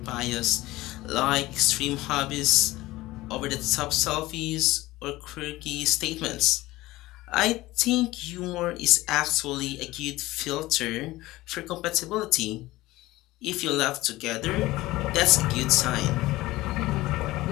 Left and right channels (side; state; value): right; quieter; 18.3 dB